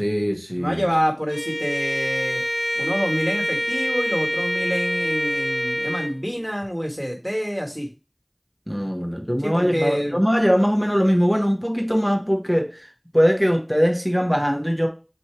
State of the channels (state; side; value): identical; both; correlation 1.00